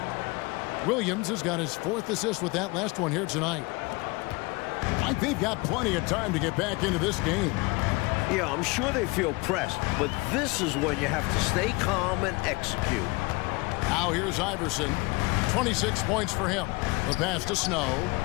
Williams has got his 4th assist with that last one here tonight. I think they've got plenty of time to get back into this game. Yeah, I'm sure they feel pressed, but this is when you have to stay calm and execute. Now here's Iverson. 26 points for him. The pass to Snow.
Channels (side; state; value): right; quieter; 25.2 dB